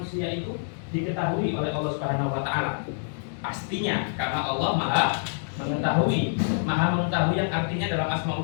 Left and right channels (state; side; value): silent; right; digital silence